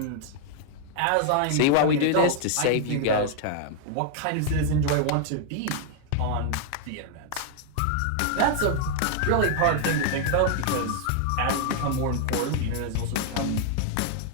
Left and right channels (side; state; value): both; different; correlation 0.00